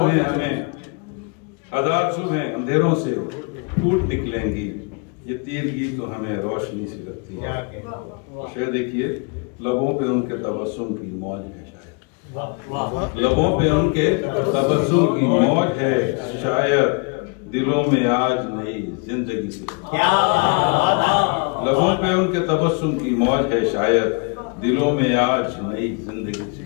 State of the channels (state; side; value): quieter; right; 34.0 dB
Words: सुबह अंधेरों से फूट निकलेंगी। ये तीरगी तो हमें रोशनी से लगती है। शेर देखिए, लबों पे उनके तबस्सुम की मौज है शायद, लबों पे उनके तबस्सुम की मौज है शायद, दिलों में आज नई जिंदगी से। लबों पे उनके तबस्सुम की मौज है शायद, दिलों में आज नई जिंदगी सी